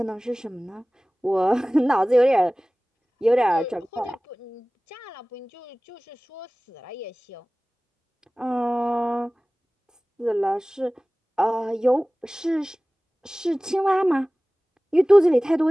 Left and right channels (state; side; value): normal; both; correlation 0.98